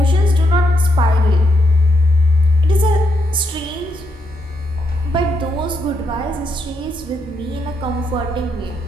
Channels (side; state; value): both; normal; correlation 0.79